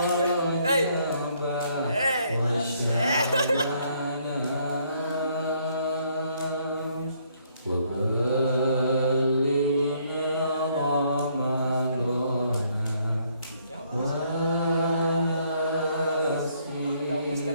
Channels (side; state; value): both; inverted; correlation -0.68